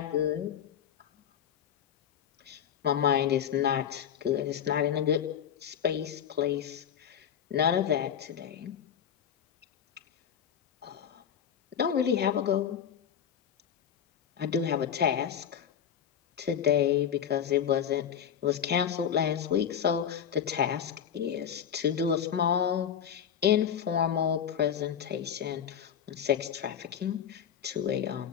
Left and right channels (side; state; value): right; quieter; 8.6 dB